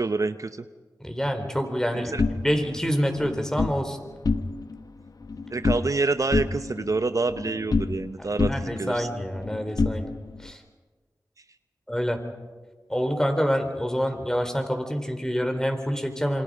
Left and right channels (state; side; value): normal; both; correlation 0.89